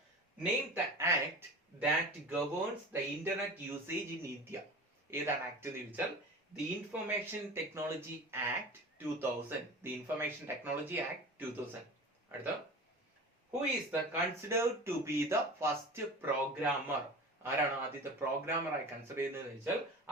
name the act that governs the internet usage in India. ഏതാണ് ആക്ട് എന്ന് ചോദിച്ചാൽ The Information Technology Act 2000. The Information Technology Act 2000. അടുത്ത who is the considered to be the first programmer? ആരാണ് ആദ്യത്തെ പ്രോഗ്രാമർ ആയി കൺസിഡർ ചെയ്യുന്നത് വെച്ചാൽ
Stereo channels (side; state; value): both; normal; correlation 0.35